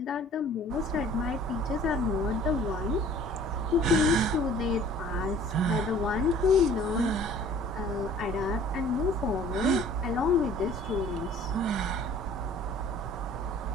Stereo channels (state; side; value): normal; both; correlation 0.51